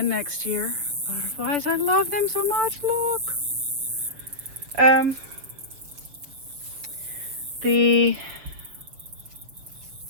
next year. Butterflies, I love them so much, look. The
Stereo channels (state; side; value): late; left; 6.6 ms